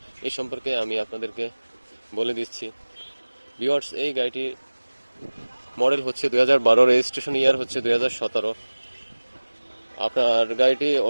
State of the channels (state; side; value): inverted; both; correlation -1.00